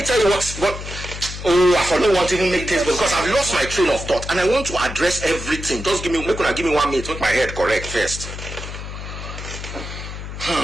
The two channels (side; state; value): left; noise; hum, 9 dB below the sound